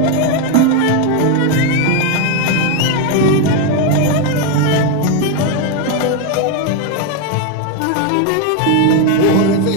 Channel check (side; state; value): both; different; correlation 0.02